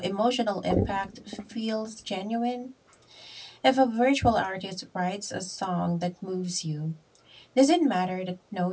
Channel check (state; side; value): identical; both; correlation 1.00